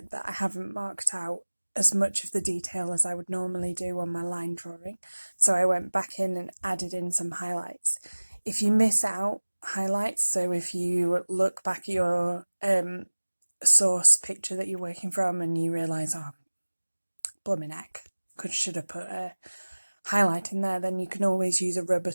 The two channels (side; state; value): both; inverted; correlation -1.00